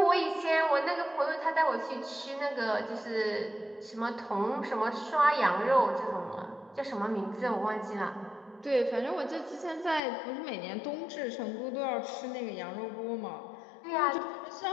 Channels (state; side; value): drops out; right; at 10.0 s